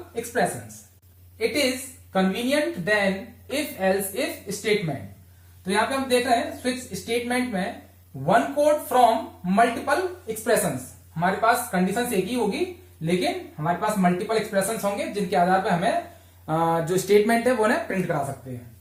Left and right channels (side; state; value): both; identical; correlation 1.00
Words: expressions. It is convenient then if else if statement. तो यहां पे हम देख रहे हैं स्विच स्टेटमेंट में one code from multiple expressions. हमारे पास कंडीशन एक ही होगी, लेकिन हमारे पास मल्टीपल एक्सप्रेशंस होंगे जिनके आधार पर हमें जो स्टेटमेंट है वो उन्हें प्रिंट करा सकते हैं।